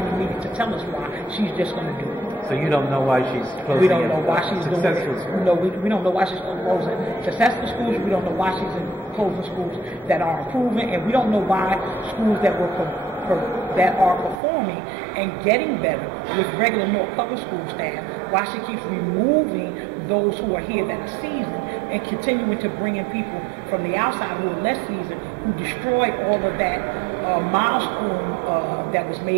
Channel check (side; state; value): left; drops out; at 14.4 s